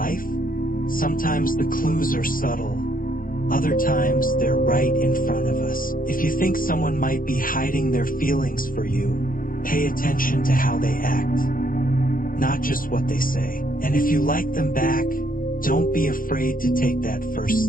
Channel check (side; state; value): right; late; 0.41 ms